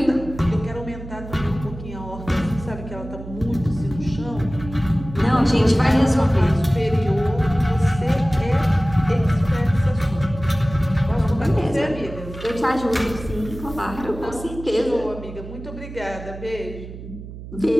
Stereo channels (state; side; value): noise; right; hum, 12 dB below the sound